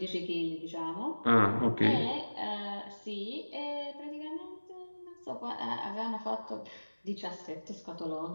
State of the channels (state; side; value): inverted; both; correlation -1.00